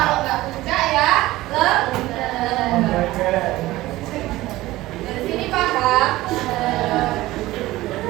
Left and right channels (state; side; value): quieter; left; 17.5 dB